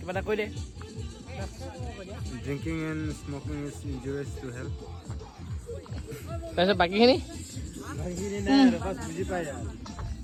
এটা কৈ দে Drinking and smoking is injurious to health. তাৰপিছত বাকীখিনি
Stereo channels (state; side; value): identical; both; correlation 1.00